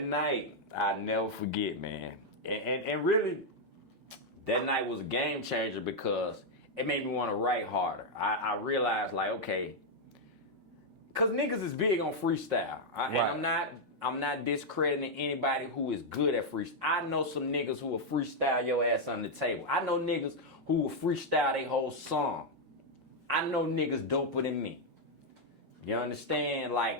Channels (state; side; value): normal; both; correlation -0.01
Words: night, I'll never forget, man. And really, that night was a game changer because it made me want to write harder. I realized, like, okay, because niggas is big on freestyle. Right. And I'm not discrediting anybody who is good at freestyle. I know some niggas who will freestyle your ass on the table. I know niggas who will freestyle their whole song. I know niggas doper than me. You understand?